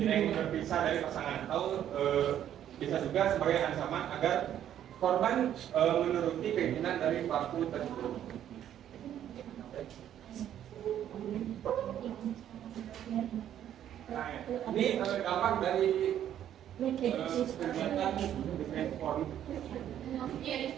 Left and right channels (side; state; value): left; quieter; 10.7 dB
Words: ingin berpisah dari pasangan, atau bisa juga sebagai ancaman agar korban menuruti keinginan dari pelaku tersebut. Nah, ini dampak dari kegiatan defense porn.